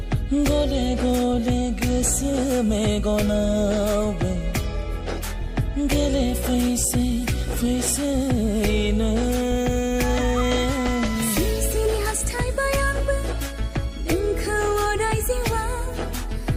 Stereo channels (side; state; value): both; identical; correlation 1.00